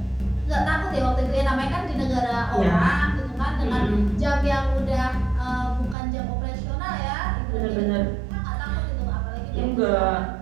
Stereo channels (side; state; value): left; drops out; at 6.0 s